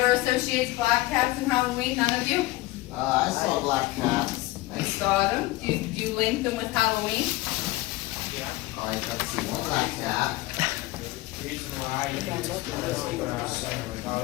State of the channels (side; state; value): right; quieter; 19.3 dB